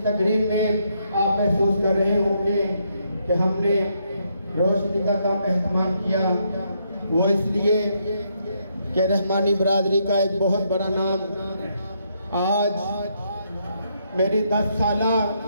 तकरीब में आप महसूस कर रहे होंगे कि हमने रोशनी का कम एहतमाम किया, वो इसलिए कि रहमानी बरादरी का एक बहुत बड़ा नाम आज मेरी 10 साला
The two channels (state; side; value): inverted; both; correlation -0.76